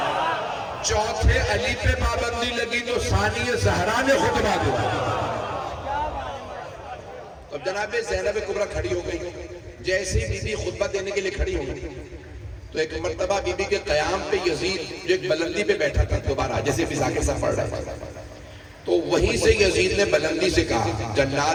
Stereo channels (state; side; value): identical; both; correlation 1.00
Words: چوتھے علی پہ پابندی لگی تو ثانی زہرا نے خطبہ دیا. اب جناب زینب کبریٰ کھڑی ہو گئی. جیسے ہی بی بی خطبہ دینے کے لیے کھڑی ہو گئی تو ایک مرتبہ بی بی کے قیام پہ یزید جو ایک بلندی پہ بیٹھا تھا دوبارہ, جیسے بھی ذاکر صاحب پڑھ رہا تھا, تو وہیں سے یزید نے بلندی سے کہا